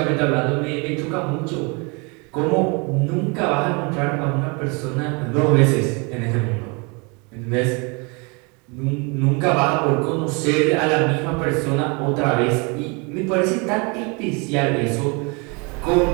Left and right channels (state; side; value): quieter; left; 30.9 dB